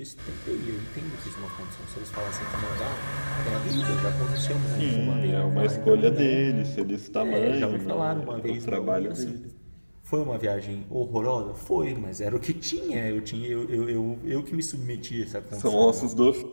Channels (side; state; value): both; inverted; correlation -1.00